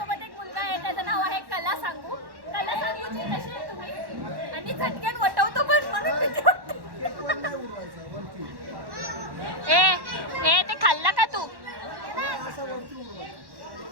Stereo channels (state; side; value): late; left; 1.1 ms